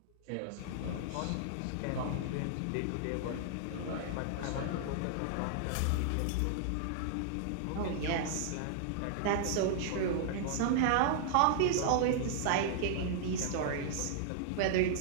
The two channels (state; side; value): different; both; correlation -0.01